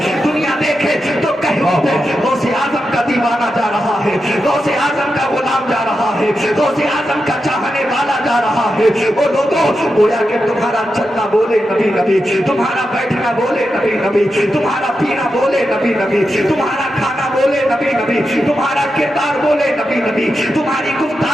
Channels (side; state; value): both; normal; correlation 0.88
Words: دنیا دیکھے تو کہہ اٹھے غوث اعظم کا دیوانہ جا رہا ہے، غوث اعظم کا غلام جا رہا ہے، غوث اعظم کا چاہنے والا جا رہا ہے۔ وہ لوگوں، گویا کہ تمہارا چلنا بولے نبی نبی، تمہارا بیٹھنا بولے نبی نبی، تمہارا پینا بولے نبی نبی، تمہارا کھانا بولے نبی نبی، تمہارا کردار بولے نبی نبی، تمہاری